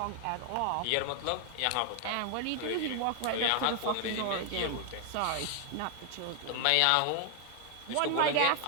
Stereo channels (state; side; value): different; both; correlation 0.00